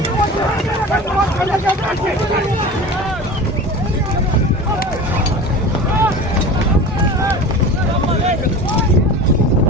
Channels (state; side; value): normal; both; correlation 0.34